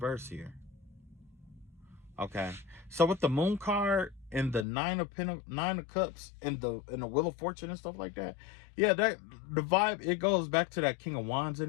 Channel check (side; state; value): right; drops out; at 4.7 s